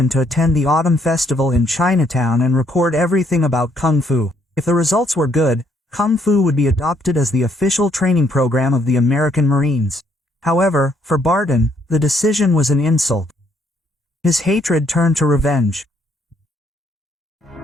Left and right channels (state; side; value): normal; both; correlation 0.69